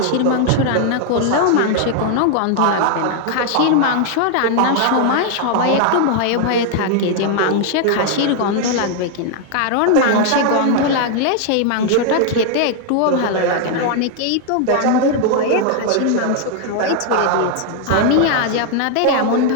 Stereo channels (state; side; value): different; both; correlation 0.00